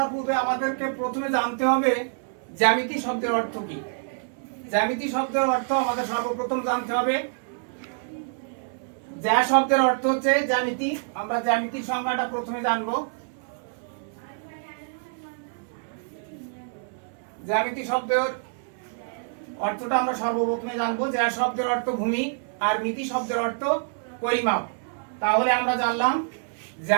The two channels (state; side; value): silent; left; 59 dB below the other